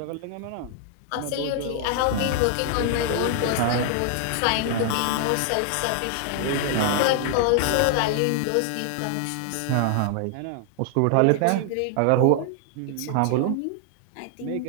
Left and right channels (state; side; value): different; both; correlation 0.00